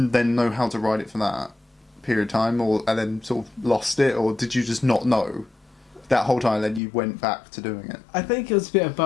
know how to ride it for that period of time, and then sort of lost it, or did you just not know that whole time? Then you went back to doing it. I think it was a bit of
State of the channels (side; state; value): right; drops out; at 6.8 s